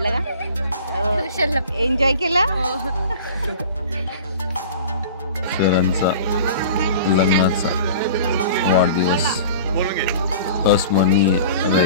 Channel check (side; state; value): both; inverted; correlation -0.41